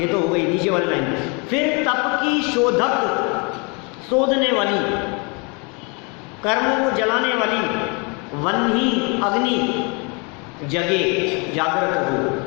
तो हो गई नीचे वाली लाइन। फिर तप की शोधक, शोधने वाली, कर्मों को जलाने वाली, वन्ही अग्नि जगे, जागृत हो।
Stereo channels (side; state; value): right; quieter; 32.1 dB